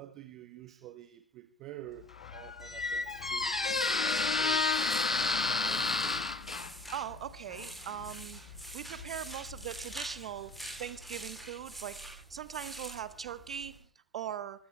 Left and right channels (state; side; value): normal; both; correlation 0.46